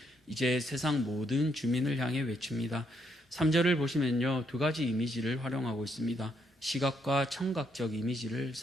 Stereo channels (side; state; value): both; normal; correlation 0.75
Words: 이제 세상 모든 주민을 향해 외칩니다. 3절을 보시면요, 두 가지 이미지를 활용하고 있습니다. 시각과 청각적 이미지를